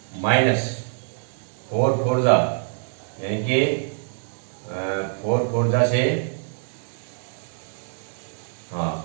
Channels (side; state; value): left; silent; digital silence